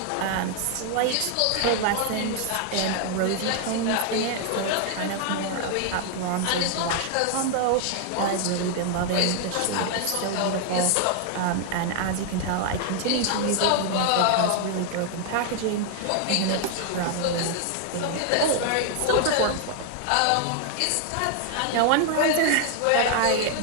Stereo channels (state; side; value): different; both; correlation 0.00